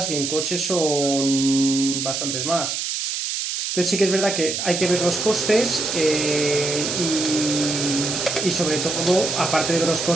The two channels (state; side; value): noise; right; hiss, 2 dB below the sound